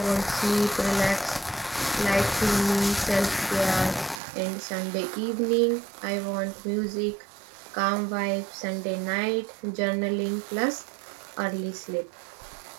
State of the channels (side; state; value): left; drops out; at 4.2 s